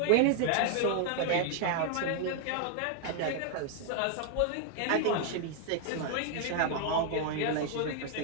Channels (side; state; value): both; different; correlation 0.00